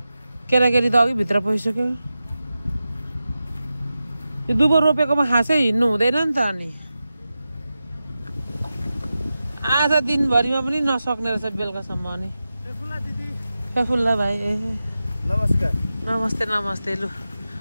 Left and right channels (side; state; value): both; inverted; correlation -0.92